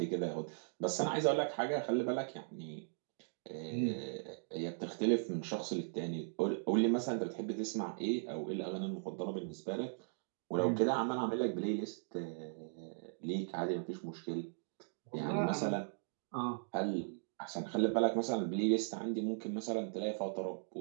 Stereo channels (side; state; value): left; silent; digital silence